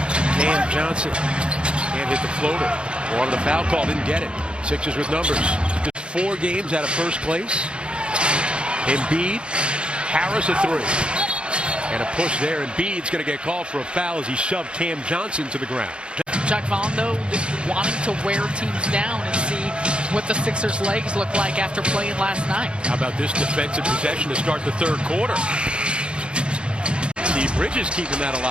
Cam Johnson can't hit the floater. Wanted the foul call, didn't get it. Sixers with numbers. Just 4 games out of first place. Embiid, Harris a 3. And a push there. Embiid's going to get called for a foul as he shoved Cam Johnson to the ground. Chuck Vaughn, though, wanting to wear teams down and see what the Sixers' legs look like after playing last night. How about this defensive possession to start the third quarter? Steve Bridges keeping that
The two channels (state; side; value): late; left; 0.056 ms